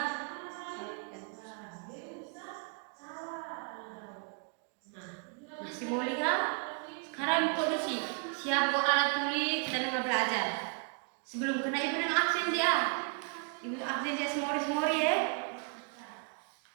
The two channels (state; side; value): quieter; left; 38.4 dB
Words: Masih mau lihat? Sekarang produksi. Siap buat alat tulis, kita nengah belajar. Sebelum kena ibu nengah absen dia. Ibu absen dia semori ya.